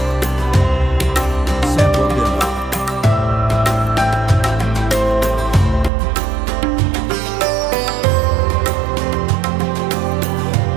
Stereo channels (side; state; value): left; drops out; at 5.9 s